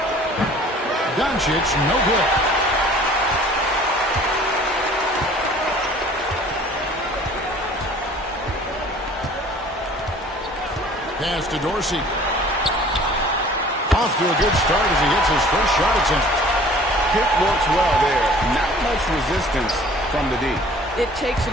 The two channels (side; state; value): both; normal; correlation 0.50